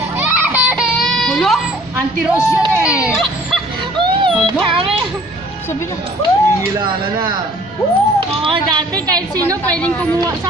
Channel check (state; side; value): normal; both; correlation 0.54